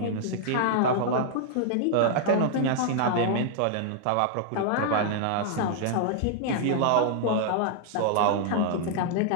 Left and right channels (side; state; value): both; different; correlation -0.01